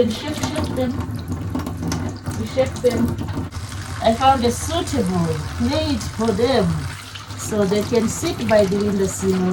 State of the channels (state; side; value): identical; both; correlation 1.00